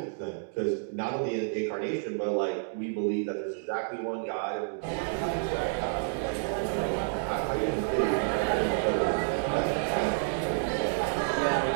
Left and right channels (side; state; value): left; silent; digital silence